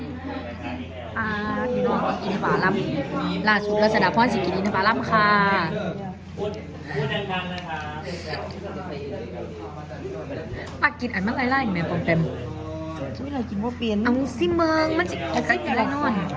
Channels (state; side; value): identical; both; correlation 1.00